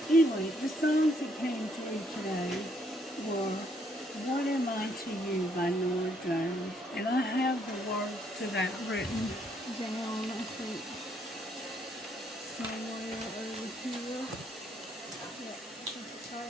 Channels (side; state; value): both; normal; correlation 0.70